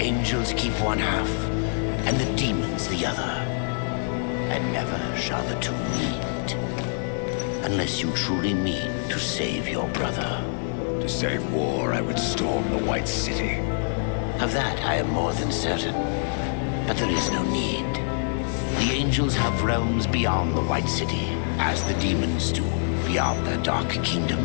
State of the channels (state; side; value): silent; right; digital silence